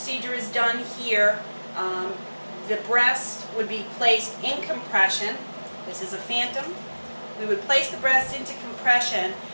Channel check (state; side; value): inverted; both; correlation -1.00